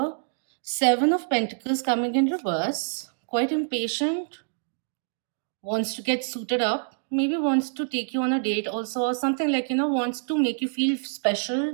Seven of Pentacles coming in reverse. Quite impatient, wants to get suited up, maybe wants to take you on a date also, or something like, wants to make you feel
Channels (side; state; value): left; silent; digital silence